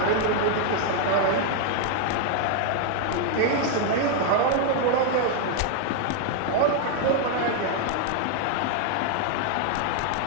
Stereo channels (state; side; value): different; both; correlation 0.00